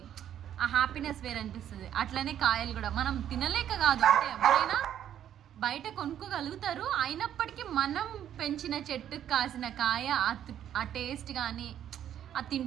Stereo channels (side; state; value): left; quieter; 10.4 dB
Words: ఆ హ్యాపీనెస్ వేరు అనిపిస్తుంది. అట్లనే కాయలు కూడా మనం తినలేక కాదు, అంటే ఎవరైనా బయట కొనుక్కోగలుగుతారు. అయినప్పటికీ మనం పెంచిన చెట్టుకు కాసిన కాయ ఆ టేస్ట్ కానీ, అది